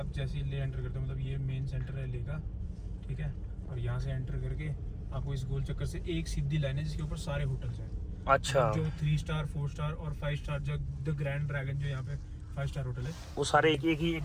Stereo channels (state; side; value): identical; both; correlation 1.00